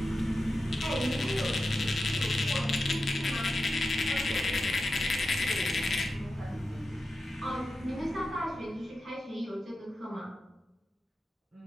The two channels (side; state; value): both; normal; correlation 0.91